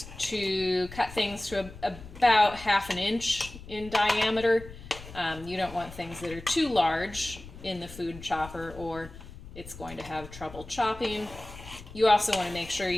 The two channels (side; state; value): left; noise; rumble, 16 dB below the sound